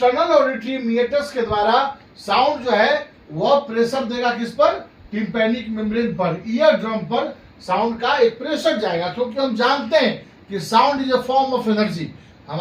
ऑडिटरी मीटर्स के द्वारा साउंड जो है वह प्रेशर देगा किस पर, टिम्पैनिक मेम्ब्रेन पर, ईयर ड्रम पर साउंड का एक प्रेशर जाएगा। क्योंकि हम जानते हैं कि sound is a form of energy.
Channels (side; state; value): both; identical; correlation 1.00